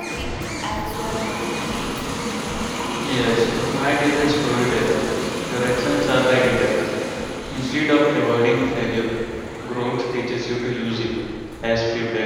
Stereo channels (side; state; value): both; identical; correlation 1.00